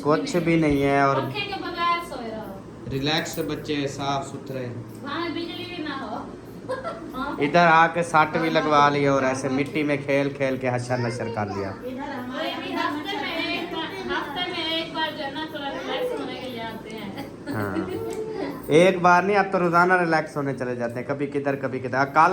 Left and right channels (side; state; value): both; identical; correlation 1.00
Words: कुछ भी नहीं है। और पंखे के बगैर सोए रहो। रिलैक्स बच्चे, साफ सुथरे। वहाँ बिजली भी ना हो। इधर आके सट भी लगवा ली और ऐसे मिट्टी में खेल खेल के हशर नशर कर लिया। हफ्ते में एक बार जो है ना थोड़ा रिलैक्स होने के लिए आते हैं। हाँ एक बार नहीं, अब तो रोजाना रिलैक्स होने चले जाते हैं, कभी किधर कभी किधर।